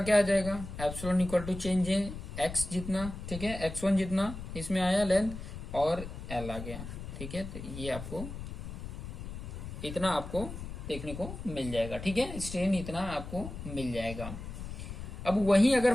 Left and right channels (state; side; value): noise; left; rumble, 9 dB below the sound